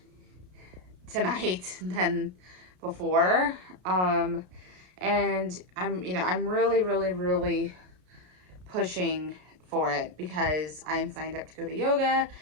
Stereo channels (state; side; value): late; left; 33 ms